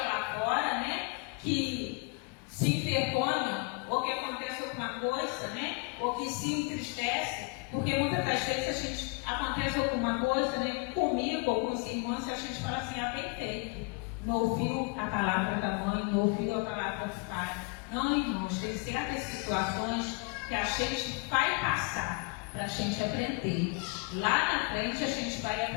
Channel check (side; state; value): right; quieter; 30.3 dB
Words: lá fora, né? Que se envergonha, ou que acontece alguma coisa, né? Ou que se entristece, porque muitas das vezes acontece alguma coisa, né? Comigo ou com os irmãos, a gente fala assim, bem feito. Não ouviu a palavra da mãe, não ouviu a palavra do pai. Não, irmãos, tem certas situações que a gente vai passar para a gente aprender. Lá na frente a gente vai